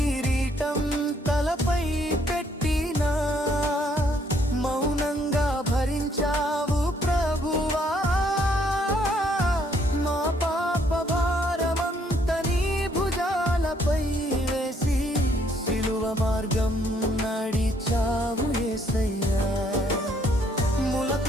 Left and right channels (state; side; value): normal; both; correlation 0.68